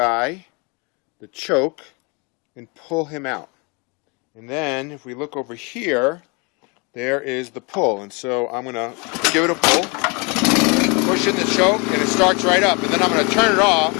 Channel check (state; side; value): quieter; right; 30.5 dB